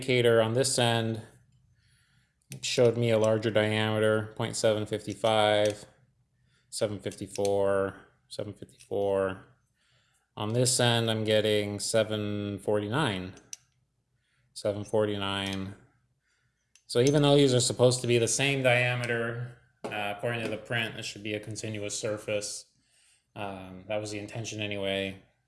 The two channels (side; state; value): both; identical; correlation 1.00